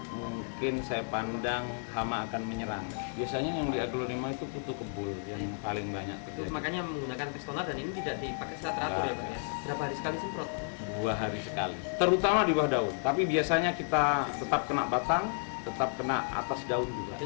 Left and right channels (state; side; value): silent; right; digital silence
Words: mungkin saya pandang hama akan menyerang. Biasanya yang di aglonema itu kutu kebul yang paling banyak terjadi. Makanya menggunakan Pestona, dan ini tidak dipakai secara teratur ya Pak ya. Berapa hari sekali semprot? 2 hari sekali, terutama di bawah daun. Tapi biasanya kita tetap kena batang, tetap kena atas daun juga.